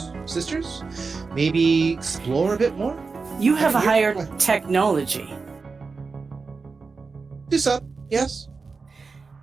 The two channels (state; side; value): quieter; left; 4.5 dB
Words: sisters, maybe explore a bit more. You have a You're- higher technology. Do some, yes.